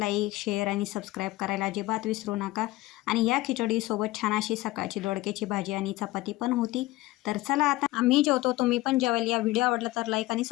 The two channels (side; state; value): right; quieter; 18.5 dB